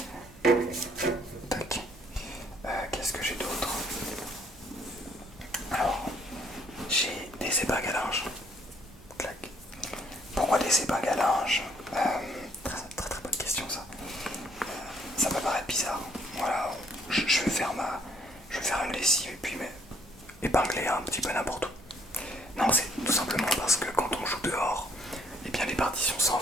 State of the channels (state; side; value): normal; both; correlation 0.65